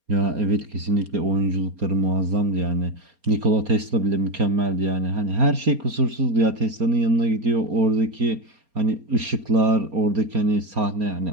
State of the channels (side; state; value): left; late; 4.3 ms